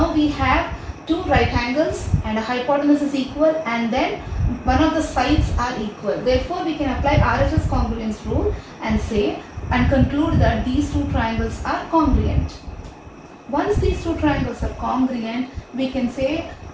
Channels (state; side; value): identical; both; correlation 1.00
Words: we have two right angles and a hypotenuse is equal, and then one of the sides are equal. Therefore, we can apply RHS congruence rule and say and conclude that these two triangles are congruent. Once these two triangles are congruent, we can say